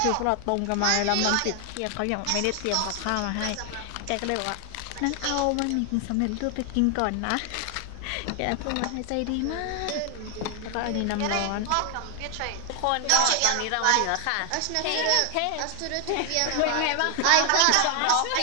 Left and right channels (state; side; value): different; both; correlation 0.00